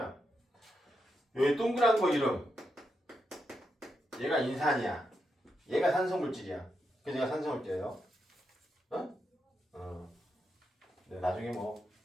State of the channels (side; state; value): both; normal; correlation 0.84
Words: 여기 동그란 거 이름, 얘가 인산이야. 얘가 산성물질이야. 그래서 얘가 산성을 떼요. 네, 나중에 뭐